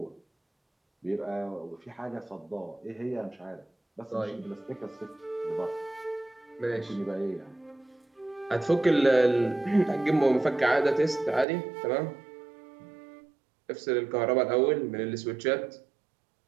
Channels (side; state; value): left; drops out; at 11.5 s